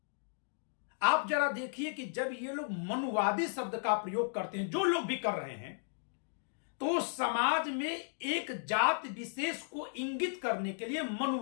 आप जरा देखिए कि जब ये लोग मनुवादी शब्द का प्रयोग करते हैं, जो लोग भी कर रहे हैं, तो समाज में एक जात विशेष को इंगित करने के लिए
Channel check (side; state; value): right; silent; digital silence